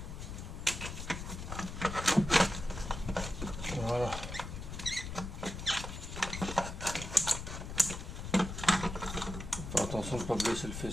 Voilà. Faire attention de ne pas blesser le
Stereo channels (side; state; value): left; noise; rumble, 7 dB below the sound